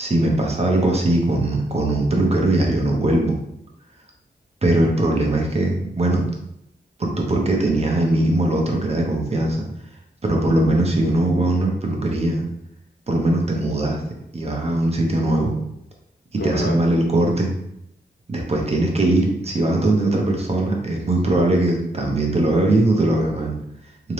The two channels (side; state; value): both; normal; correlation 0.77